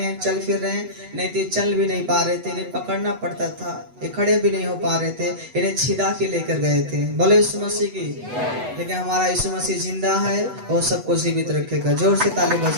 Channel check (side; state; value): left; late; 8.1 ms